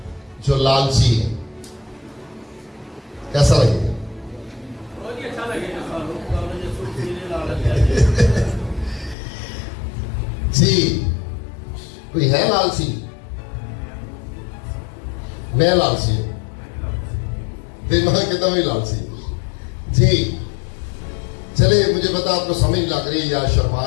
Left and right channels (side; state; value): right; drops out; at 9.2 s